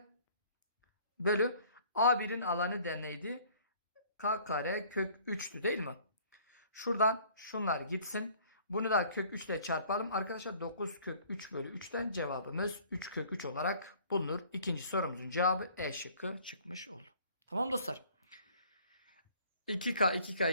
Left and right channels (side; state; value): both; inverted; correlation -0.54